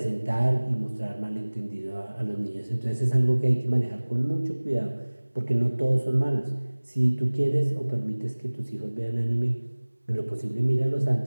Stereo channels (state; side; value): inverted; both; correlation -1.00